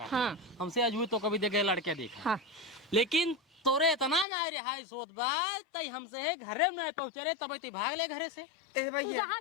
हाँ हमसे अजुए तो कभी देखे लड़के देखा। हाँ लेकिन तोरे इतना ना रिहाई सोत बात तई हमसे है घरे में पहुंचे रे तब भाग ले घरे से। ए भाई तू जहाँ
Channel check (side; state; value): right; drops out; at 4.2 s